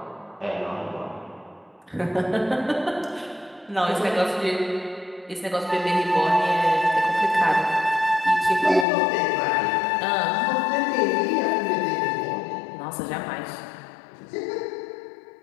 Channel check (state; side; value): drops out; right; at 8.8 s